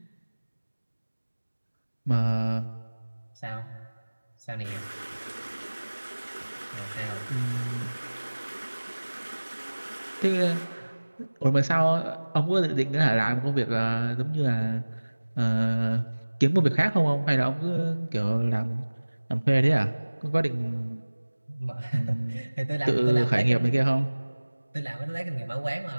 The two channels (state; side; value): inverted; both; correlation -1.00